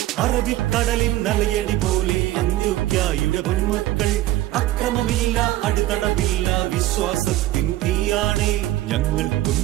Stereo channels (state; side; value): quieter; left; 15.6 dB